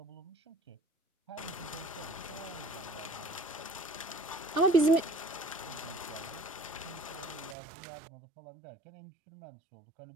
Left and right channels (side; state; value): left; drops out; at 7.6 s